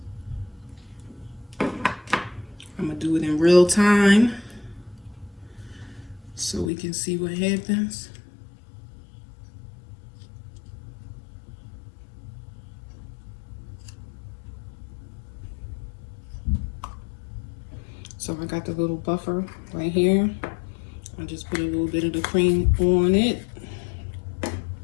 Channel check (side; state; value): right; drops out; at 6.7 s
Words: I'm gonna do it in real time so we can see what happens. So I got the little buffer right here. I just put a little bit of the cream on it.